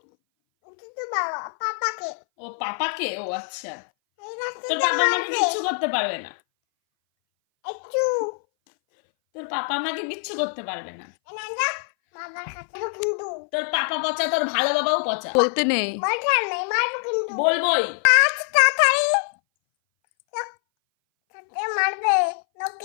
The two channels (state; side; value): silent; right; 60 dB below the other